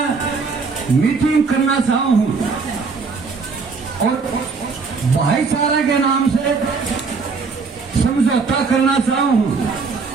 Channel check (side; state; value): left; quieter; 4.7 dB